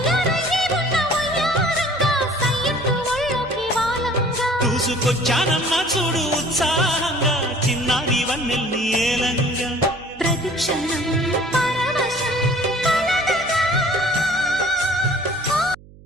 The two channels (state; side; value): noise; right; hum, 22 dB below the sound